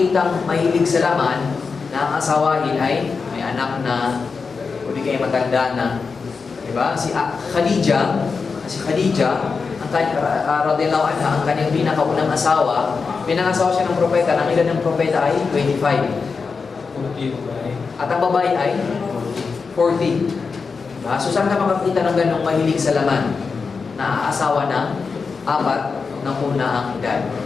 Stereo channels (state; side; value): quieter; right; 5.0 dB